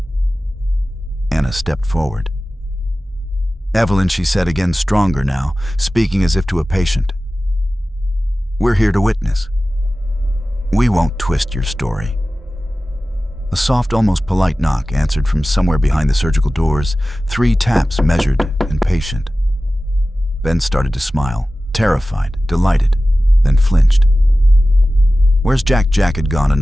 Anna stepped forward. Evelyn, she said again, stronger now, speaking as if to a patient. We're here to witness. We won't twist your story. A soft, almost polite knock answered from somewhere behind the surgical doors, 3 taps measured and patient. Ben started to smile, terrified, delighted, then flinched. Where's Jack? Jack had gone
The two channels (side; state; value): both; normal; correlation 0.96